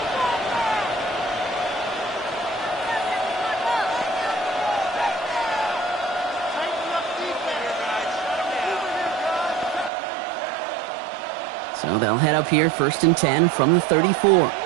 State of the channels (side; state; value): left; drops out; at 9.9 s